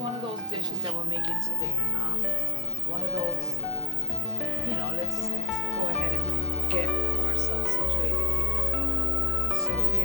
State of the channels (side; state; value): right; quieter; 3.4 dB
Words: of those dishes that we're making today. One of those, you know, let's go ahead and get ourselves situated here. So we're